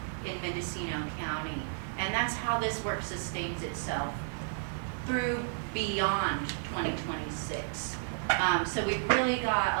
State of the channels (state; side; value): silent; left; 56 dB below the other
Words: in Mendocino County. And that's how this work sustains itself through beyond 2026. So we've really got